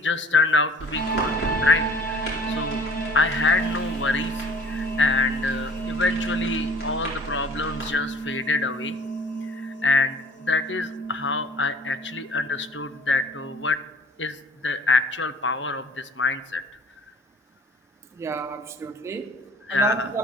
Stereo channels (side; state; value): both; normal; correlation 0.51